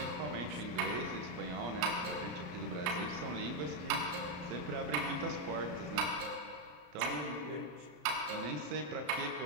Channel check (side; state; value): left; late; 34 ms